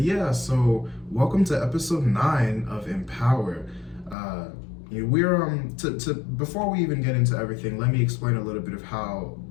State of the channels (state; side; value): drops out; right; at 4.2 s